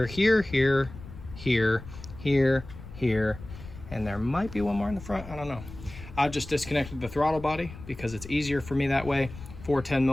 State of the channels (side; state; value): left; noise; rumble, 14 dB below the sound